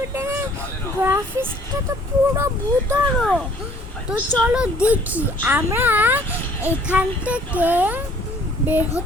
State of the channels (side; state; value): both; normal; correlation 0.57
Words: গ্রাফিক্সটা তো পুরো ভূতড়ো। তো চলো দেখি আমরা এখান থেকে বের